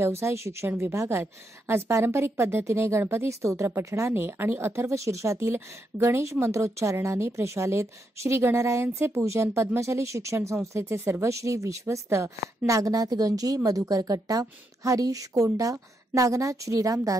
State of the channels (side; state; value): both; normal; correlation 0.81